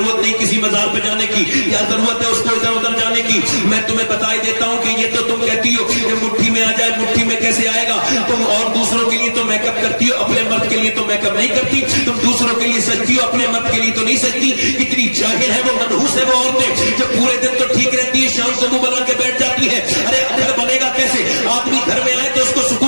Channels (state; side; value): inverted; both; correlation -1.00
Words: نہیں کسی مزار پہ جانے کی, کیا ضرورت ہے اس کو ادھر ادھر جانے کی. میں تمہیں بتا ہی دیتا ہوں کہ یہ تو تم کہتی ہو کہ مٹھی میں آ جائے, مٹھی میں کیسے آئے گا؟ تم اور دوسروں کے لیے تو میک اپ کرتی ہو, اپنے مرد کے لیے تو میک اپ نہیں کرتی. تم دوسروں کے لیے سجتی ہو, اپنے مرد کے لیے تو نہیں سجتی. کتنی جاہل ہے وہ, منحوس ہے وہ عورتیں جو پورے دن تو ٹھیک رہتی ہے, شام کو منہ بنا کے بیٹھ جاتی ہے. ارے گھر بنے گا کیسے؟ آدمی گھر میں آئے تو اس کو